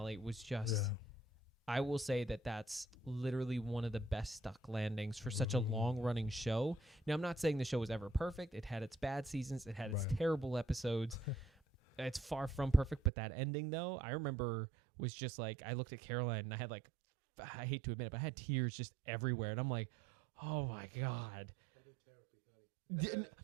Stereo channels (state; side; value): drops out; left; at 13.1 s